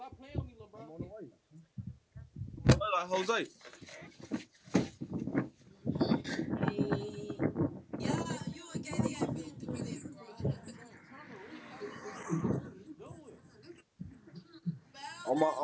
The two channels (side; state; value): both; identical; correlation 1.00